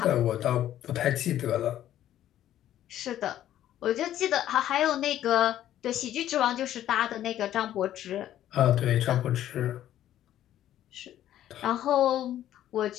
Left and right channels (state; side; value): quieter; right; 12.1 dB